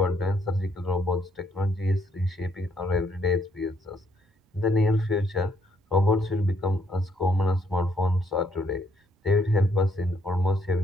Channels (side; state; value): both; normal; correlation 0.70